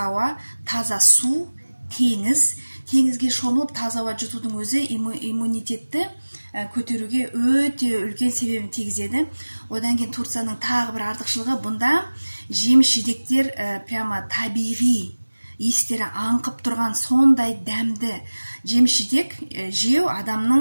ауа, таза су, теңіз. Теңізге шомылып таза ауа жұтудың өзі иммунитетті көтеруге өте үлкен себебін тигізеді. Одан кейін Турцияның тағы бір артықшылығы, бұнда жеміс-жидектер прямо табиғи, естері аңқып тұрған сондай дәмді жеміс-жидек жеу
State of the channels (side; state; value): both; inverted; correlation -1.00